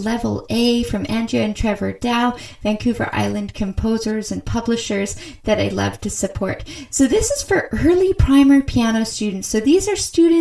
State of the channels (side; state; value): both; identical; correlation 1.00